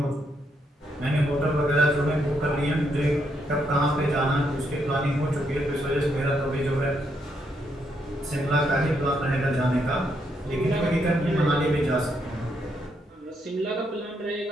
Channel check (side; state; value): both; normal; correlation 0.77